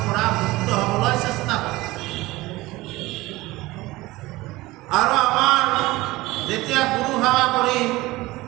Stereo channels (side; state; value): left; quieter; 19.6 dB